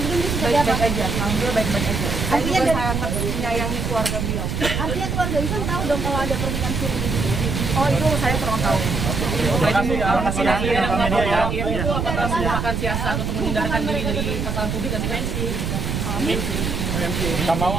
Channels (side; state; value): right; noise; rumble, 1 dB below the sound